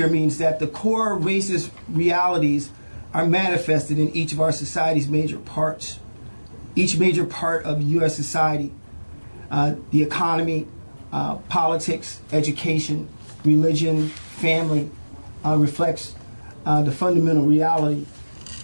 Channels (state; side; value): inverted; both; correlation -1.00